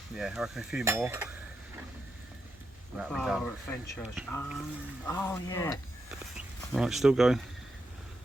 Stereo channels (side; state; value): both; normal; correlation 0.85